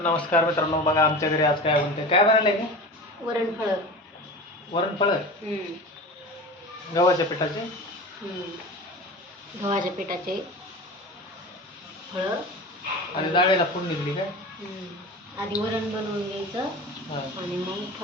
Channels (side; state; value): both; normal; correlation 0.32